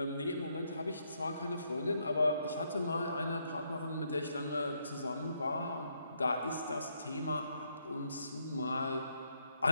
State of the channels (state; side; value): inverted; both; correlation -0.75